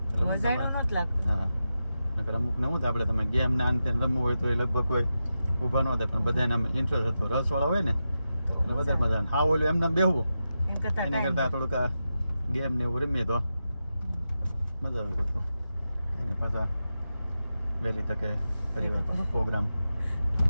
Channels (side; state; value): both; inverted; correlation -0.90